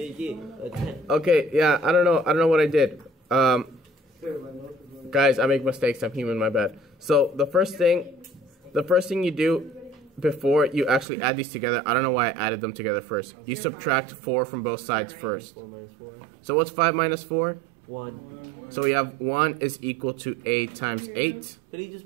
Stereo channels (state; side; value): drops out; left; at 11.1 s